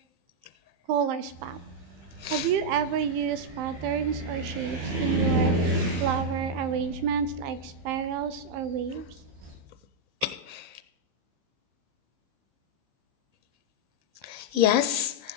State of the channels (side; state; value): left; late; 15 ms